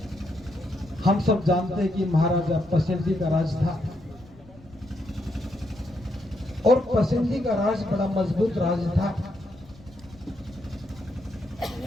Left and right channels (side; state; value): left; noise; rumble, 23 dB below the sound